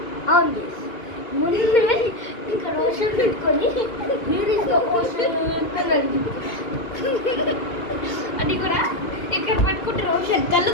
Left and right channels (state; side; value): late; right; 2.1 ms